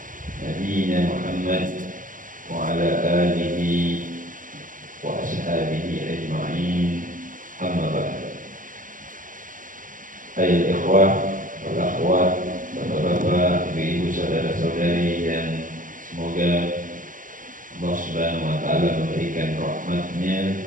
nabiyyina Muhammad wa ala alihi wa ashabihi ajma'in. Amma ba'd. Ayol ikhwah wal akhwat, bapak-bapak, ibu-ibu, saudara-saudari yang semoga Allah Subhanahu wa taala memberikan rahmat-Nya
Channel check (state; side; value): late; left; 0.39 ms